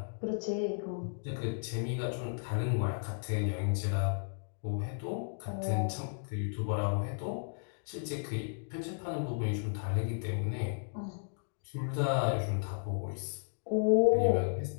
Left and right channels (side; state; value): right; silent; digital silence